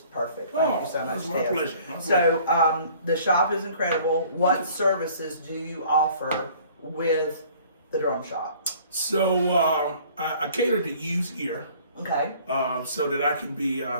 perfect. Thank you so much, it's my Tez. pleasure. So the shop is incredible. What services do you offer with the drum shop? So I cater to used gear, Okay. so that I can be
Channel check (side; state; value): both; inverted; correlation -0.53